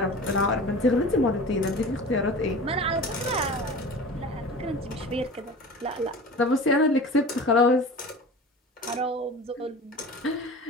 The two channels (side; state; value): both; normal; correlation 0.36